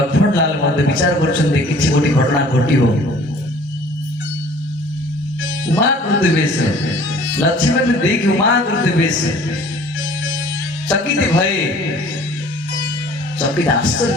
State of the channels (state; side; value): normal; both; correlation 0.51